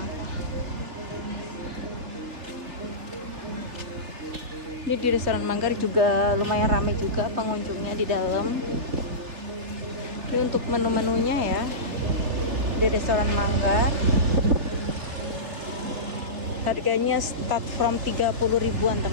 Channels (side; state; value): left; late; 3.4 ms